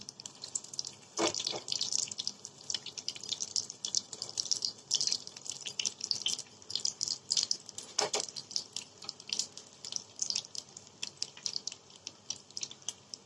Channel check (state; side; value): normal; both; correlation 0.95